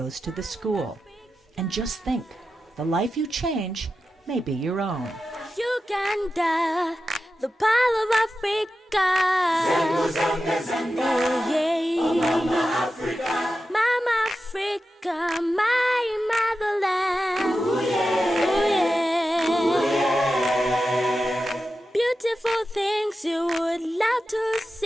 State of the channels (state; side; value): normal; both; correlation 0.91